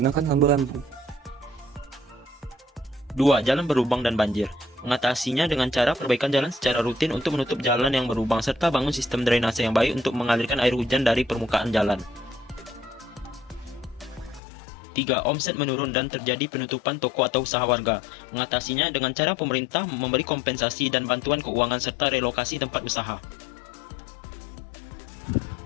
lampu-lampu. 2. Jalan berlubang dan banjir. Mengatasinya dengan cara perbaikan jalan secara rutin untuk menutup jalan yang berlubang serta bangun sistem drainase yang baik untuk mengalirkan air hujan dari permukaan jalan. 3. Omset menurun dan terjadi penutupan toko atau usaha warga. Mengatasinya dengan cara pemerintah memberi kompensasi dan bantuan keuangan serta relokasi tempat usaha.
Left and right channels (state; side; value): drops out; right; at 14.4 s